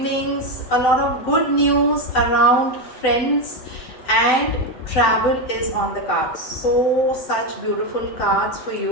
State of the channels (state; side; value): late; right; 7.8 ms